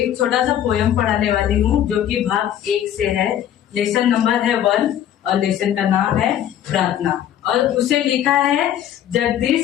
छोटा सा पोयम पढ़ाने वाली हूँ जो कि भाग 1 से है। लेसन नंबर है 1 और लेसन का नाम है प्रार्थना और उसे लिखा है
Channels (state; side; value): quieter; right; 10.8 dB